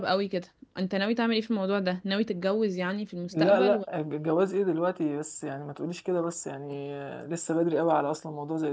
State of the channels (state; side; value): identical; both; correlation 1.00